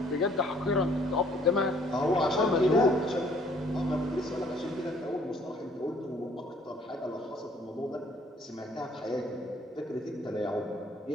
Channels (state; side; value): normal; both; correlation 0.61